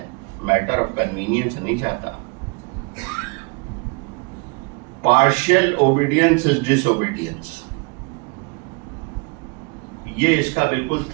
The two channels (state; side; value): quieter; left; 32.5 dB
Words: میٹر آف کنوینئنس نہیں چاہتا. Partial obedience is disobedience, یہ اس کا بالکل